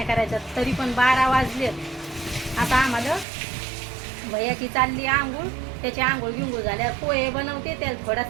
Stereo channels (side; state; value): left; drops out; at 3.2 s